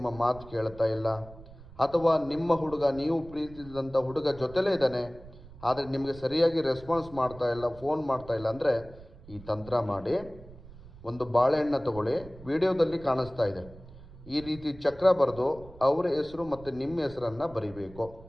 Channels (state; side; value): noise; right; rumble, 19 dB below the sound